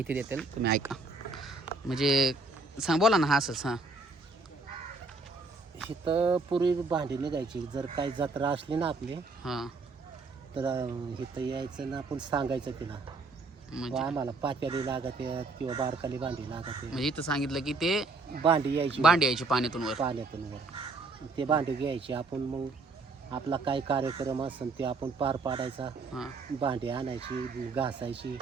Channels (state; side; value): quieter; left; 3.7 dB